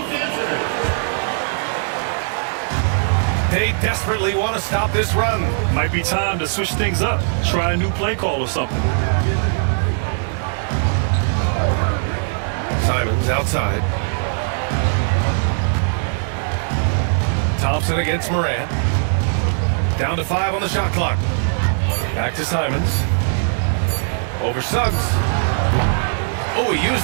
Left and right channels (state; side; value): silent; left; 66 dB below the other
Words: They desperately want to stop this run. Might be time to switch things up. Try a new play call or something. Simons outside. Thompson against Moran. Down to 5 on the shot clock. Back to Simons. Over Suggs. Oh, he used